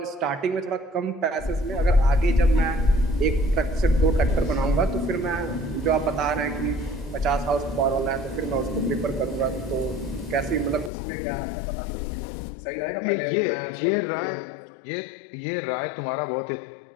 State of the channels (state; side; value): drops out; right; at 10.9 s